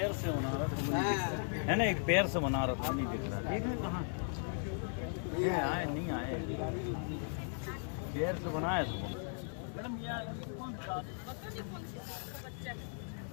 से बना रहा है ना, एक पैर से बना रहा था, नहीं दिख रहा। नहीं आए पैर से बनाया मैडम। कौन सा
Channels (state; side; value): silent; right; 53 dB below the other